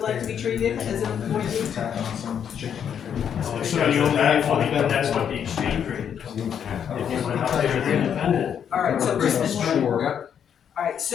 like to be treated as an employee? So you only have one, but that's what the exchange rate is. If you went out there as independent. Alright, so Christmas tree. Yep. Alright,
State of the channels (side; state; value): right; quieter; 8.4 dB